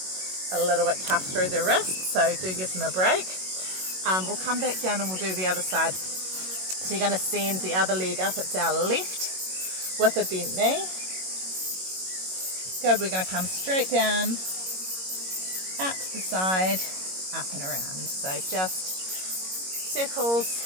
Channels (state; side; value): late; left; 22 ms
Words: a little bit tough through the wrist, so do give them a break. We'll come back down and we'll do the other side. So you're going to send the other leg up. It's our left with a bent knee. good. We're going to come straight down, out to the side, up and around. So just circles